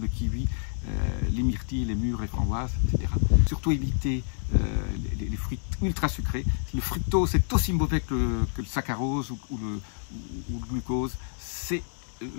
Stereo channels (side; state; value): right; silent; digital silence